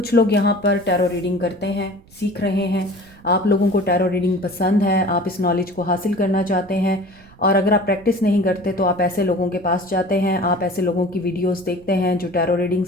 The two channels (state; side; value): noise; right; rumble, 26 dB below the sound